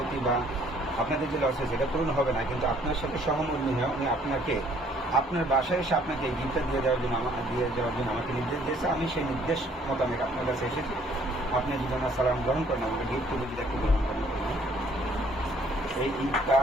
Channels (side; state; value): both; normal; correlation 0.61